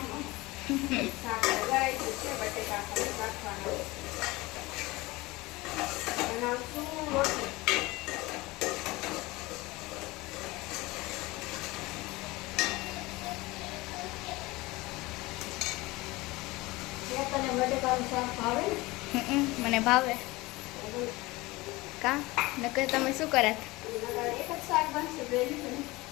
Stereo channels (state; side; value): quieter; right; 21.5 dB